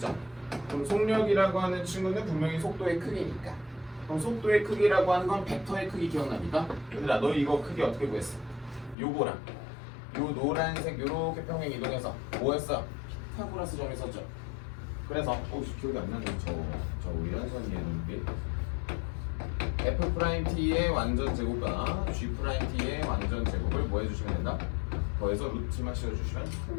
그럼 속력이라고 하는 친구는 분명히 속도의 크기니까. 그럼 속도의 크기라고 하는 건 벡터의 크기 기억납니까? 얘들아, 너 이거 크기 어떻게 구했어? 요거랑 요 노란색 요렇게 평행 이동해서 뭐였어? 피타고라스 점이 있었죠. 그래서 기억이 안 나네. 저 위연선이었는데 f 프라임 t의 완전 제곱과 g 프라임 t의 완전 제곱을 뭐 해주시면 된다? 더해서 루트만 씌워주시면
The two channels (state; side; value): drops out; right; at 9.0 s